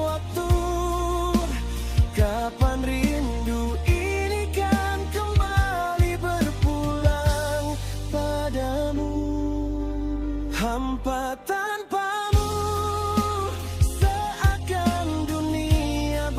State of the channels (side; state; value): both; identical; correlation 1.00